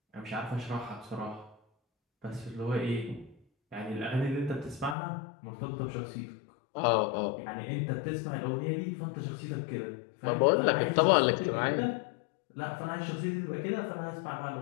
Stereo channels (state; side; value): drops out; right; at 5.0 s